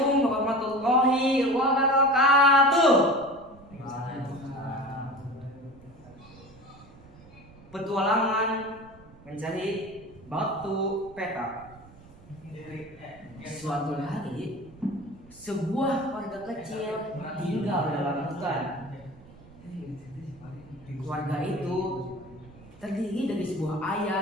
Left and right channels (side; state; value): right; noise; rumble, 22 dB below the sound